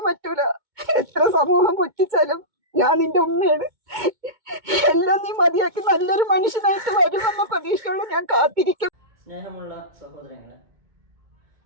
പറ്റൂല. എത്ര സമൂഹം പുച്ഛിച്ചാലും ഞാൻ നിന്റെ ഉമ്മയാണ്. എല്ലാം നീ മതിയാക്കി നല്ലൊരു മനുഷ്യനായിട്ട് വരുമെന്ന പ്രതീക്ഷയുള്ള ഞാൻ കാത്തിരിക്കും. സ്നേഹമുള്ള സഹോദരങ്ങളെ,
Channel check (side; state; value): left; late; 2.2 ms